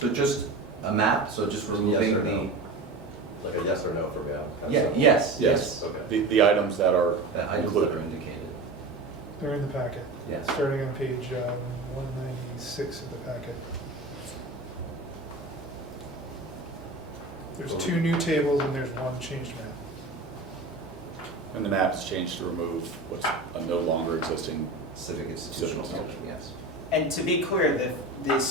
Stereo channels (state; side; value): quieter; left; 3.1 dB